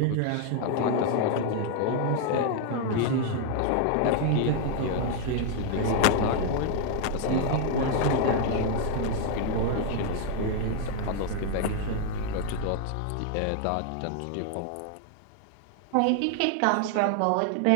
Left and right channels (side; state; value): both; different; correlation 0.00